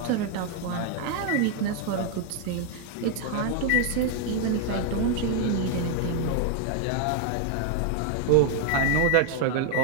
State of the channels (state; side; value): different; both; correlation 0.00